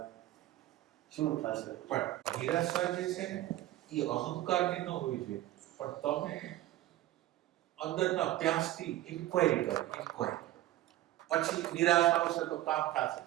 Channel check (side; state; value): left; quieter; 15.0 dB